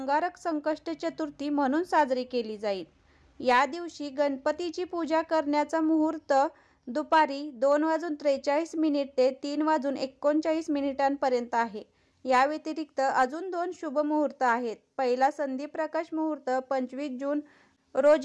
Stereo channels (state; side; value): identical; both; correlation 1.00